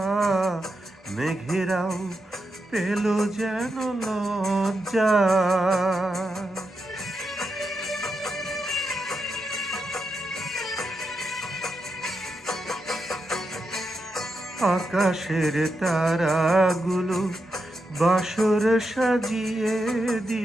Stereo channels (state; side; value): normal; both; correlation 0.86